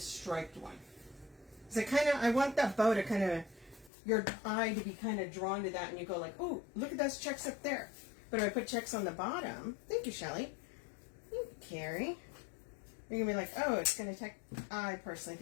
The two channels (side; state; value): right; drops out; at 3.9 s